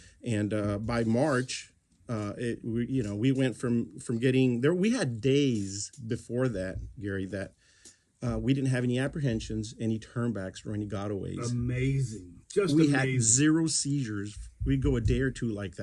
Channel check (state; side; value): identical; both; correlation 1.00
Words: And by March, we went from getting there. We had days before that, Gary, that we didn't have any apprehensions, any turnbacks, or any gotaways. Amazing. We had zero seizures. We'd go a day or two like